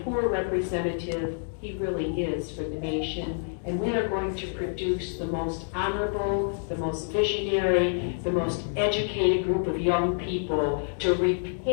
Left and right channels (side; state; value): right; silent; digital silence